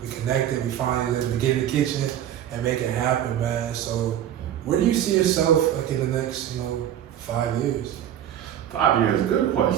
connected, we finally let me get in the kitchen and make it happen, man. So, where do you see yourself like in the next, 5 years? 5 years, good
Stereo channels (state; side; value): quieter; left; 10.9 dB